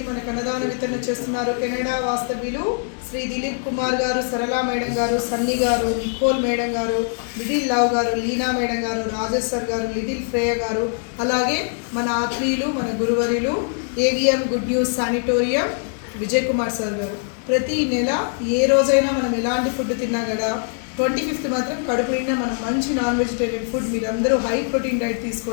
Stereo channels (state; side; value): silent; right; 61 dB below the other